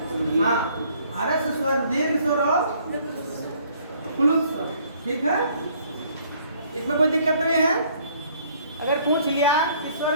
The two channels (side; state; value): both; inverted; correlation -0.62